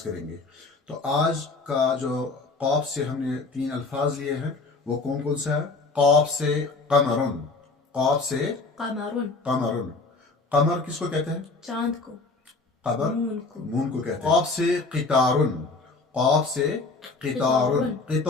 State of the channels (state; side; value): quieter; right; 3.8 dB